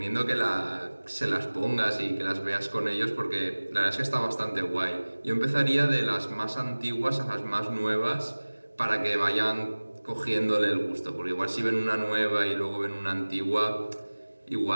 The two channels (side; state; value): both; inverted; correlation -1.00